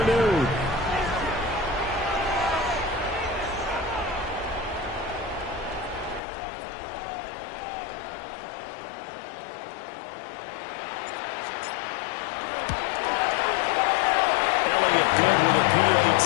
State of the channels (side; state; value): right; drops out; at 6.2 s